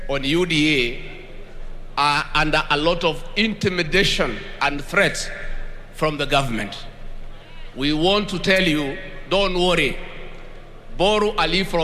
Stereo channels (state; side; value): identical; both; correlation 1.00